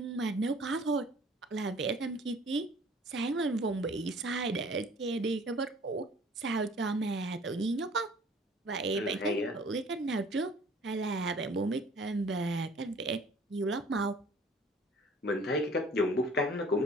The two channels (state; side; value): normal; both; correlation 0.52